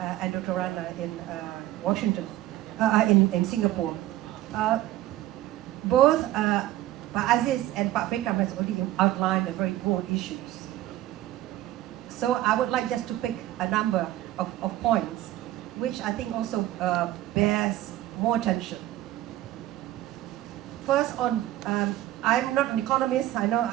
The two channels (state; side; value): quieter; left; 14.8 dB